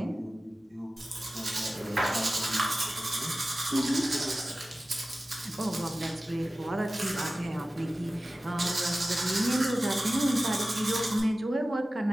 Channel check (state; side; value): normal; both; correlation 0.96